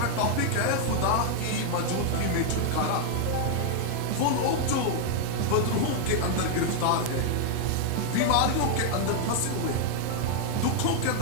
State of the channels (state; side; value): different; both; correlation 0.00